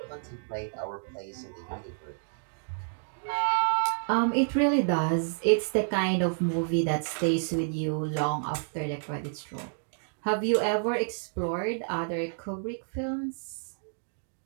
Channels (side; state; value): left; silent; digital silence